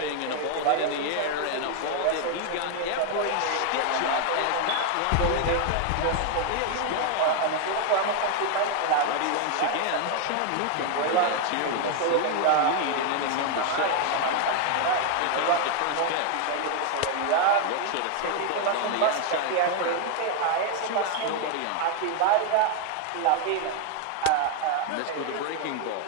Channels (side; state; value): both; different; correlation 0.00